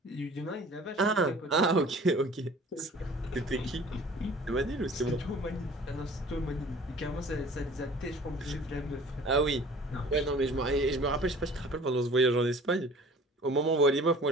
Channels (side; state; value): both; normal; correlation 0.47